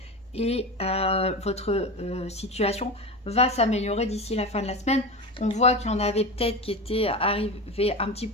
et votre situation va s'améliorer d'ici la fin de la semaine. On voit qu'il y en avait peut-être qui étaient arrivés un petit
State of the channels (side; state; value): both; normal; correlation 0.24